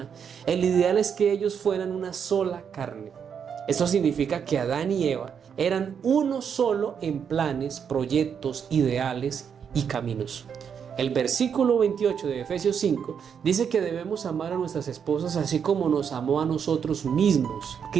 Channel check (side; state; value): left; quieter; 7.3 dB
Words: el ideal es que ellos fueran una sola carne. Esto significa que Adán y Eva eran uno solo en planes, proyectos, ideales y caminos. El versículo 28 de Efesios 5 dice que debemos amar a nuestras esposas así como nos amó a nosotros mismos.